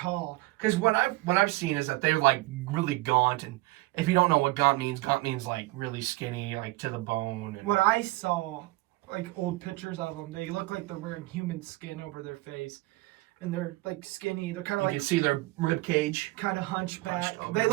Because what I've seen is that they're like really gaunt, and if you don't know what gaunt means like really skinny, like to the bone. And what I saw, like old pictures of them, they look like they're wearing human skin over their face. And they're like skinny. They're kind of like, you can see their rib cage. Kind of hunchback. They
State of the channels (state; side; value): quieter; left; 20.8 dB